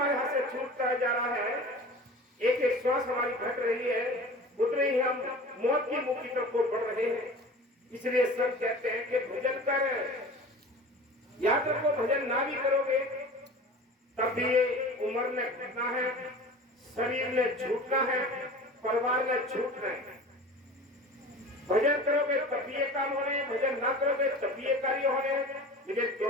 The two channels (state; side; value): normal; both; correlation 0.38